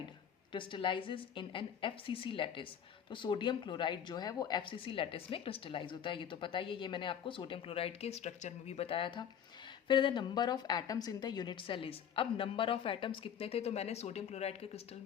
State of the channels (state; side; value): quieter; right; 8.6 dB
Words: crystallises in an FCC lattice. तो सोडियम क्लोराइड जो है वो FCC लैटिस में क्रिस्टलाइज होता है, ये तो पता ही है, ये मैंने आपको सोडियम क्लोराइड के स्ट्रक्चर में भी बताया था। फिर the number of atoms in the unit cell is. अब नंबर ऑफ एटम्स कितने थे, तो मैंने सोडियम क्लोराइड के क्रिस्टल